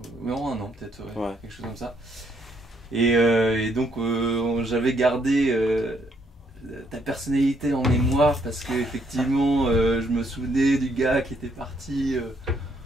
Non, 1 an peut-être, ouais, Ouais. quelque chose comme ça. Et donc j'avais gardé ta personnalité en mémoire parce que effectivement je me souvenais du gars qui était parti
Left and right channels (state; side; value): normal; both; correlation 0.71